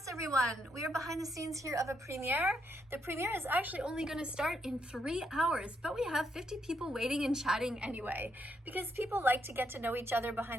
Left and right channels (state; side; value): normal; both; correlation 0.77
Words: everyone. We are behind the scenes here of a premiere. The premiere is actually only going to start in 3 hours, but we have 50 people waiting and chatting anyway, because people like to get to know each other